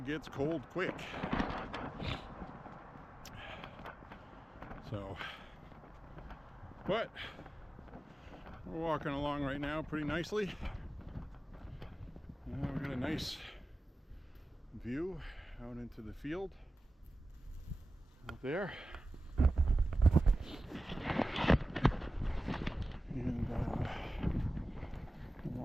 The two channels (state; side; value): normal; both; correlation 0.95